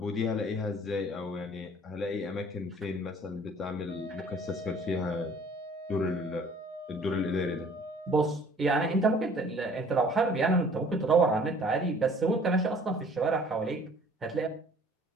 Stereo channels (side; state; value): both; normal; correlation 0.53